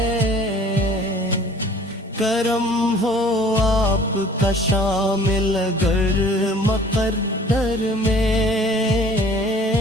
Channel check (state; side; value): normal; both; correlation 0.51